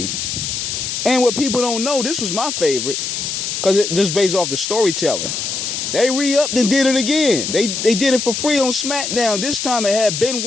And what people don't know, this was my favorite, because it just based off the storytelling. They re-upped and did it again. They did it for free on SmackDown. This time it had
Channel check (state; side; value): noise; left; hiss, 3 dB below the sound